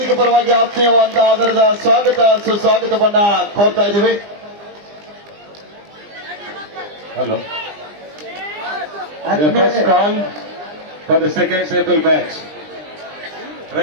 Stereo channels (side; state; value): left; late; 20 ms